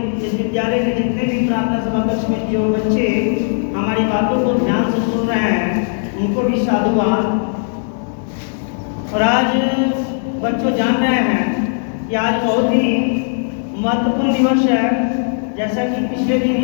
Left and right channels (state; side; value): silent; right; digital silence